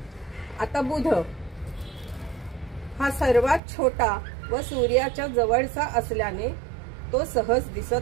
आता बुध हा सर्वात छोटा व सूर्याच्या जवळचा असल्याने तो सहज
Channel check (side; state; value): left; drops out; at 3.6 s